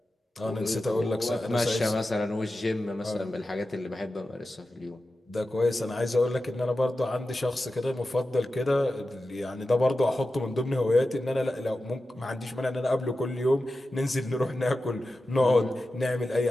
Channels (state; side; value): normal; both; correlation 0.93